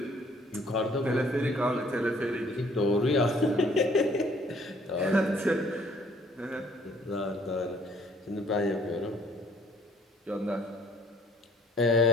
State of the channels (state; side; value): normal; both; correlation 0.60